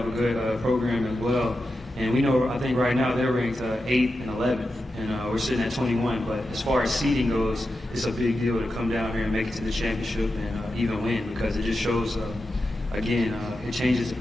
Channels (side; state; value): both; normal; correlation 0.90